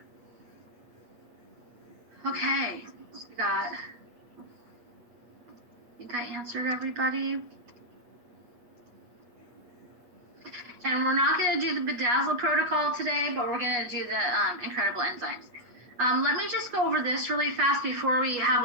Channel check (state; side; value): late; left; 8.4 ms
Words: Okay, I think I answered everybody. And we're not going to do the Bedazzle protocol today, but we're going to do the incredible enzymes. Let me just go over this really fast before we have